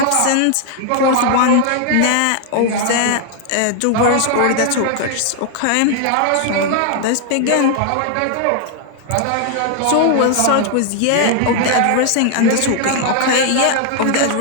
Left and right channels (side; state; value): both; different; correlation 0.00